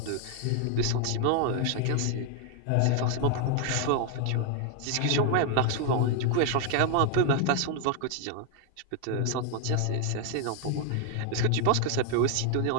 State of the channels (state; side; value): different; both; correlation 0.00